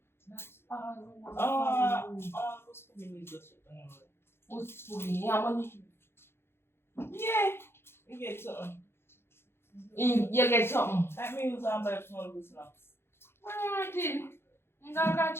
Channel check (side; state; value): right; late; 0.12 ms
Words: That's all no one for you. Who's putting me just Who's putting you money? Yeah. You get something. You get something. Like me use and buy small good snacks. Alright then. I'm gonna